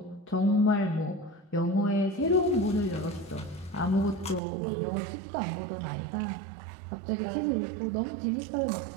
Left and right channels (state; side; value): drops out; left; at 4.4 s